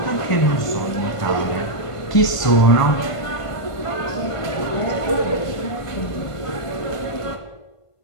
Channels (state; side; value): late; right; 1.5 ms